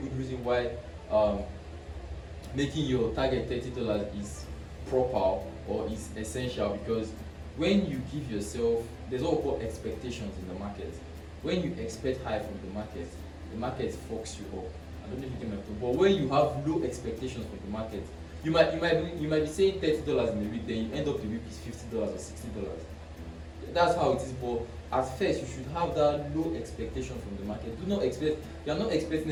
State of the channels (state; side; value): identical; both; correlation 1.00